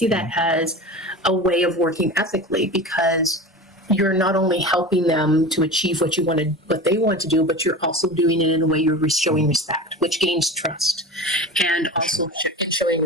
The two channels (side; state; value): both; normal; correlation 0.30